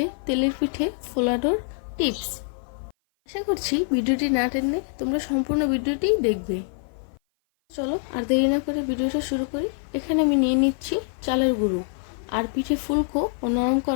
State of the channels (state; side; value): silent; right; 55 dB below the other